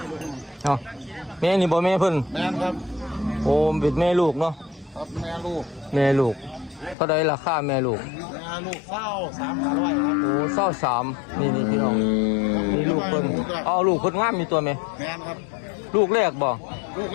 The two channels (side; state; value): right; drops out; at 7.0 s